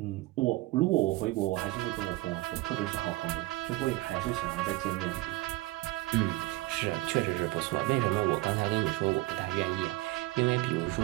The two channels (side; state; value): left; quieter; 19.5 dB